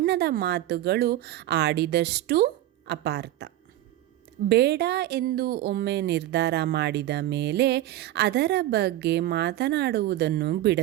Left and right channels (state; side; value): quieter; left; 14.2 dB